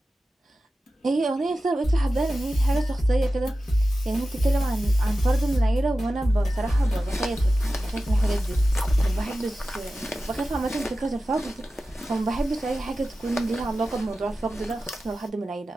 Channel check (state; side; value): normal; both; correlation 0.93